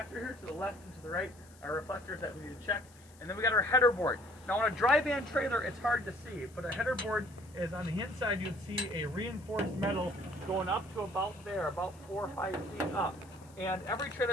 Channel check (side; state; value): left; noise; hiss, 26 dB below the sound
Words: here, to the left and to the right, our reflectors that we need to check. And then we got our header board. Now on a dry van trailer, it's hard to see, but a header board is on the inside. You'd see a reinforced metal going up to about there, about 4 or 5 feet up. And every